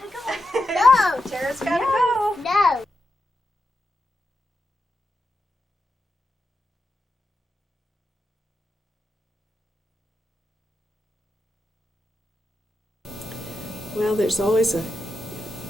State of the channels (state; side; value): normal; both; correlation 0.88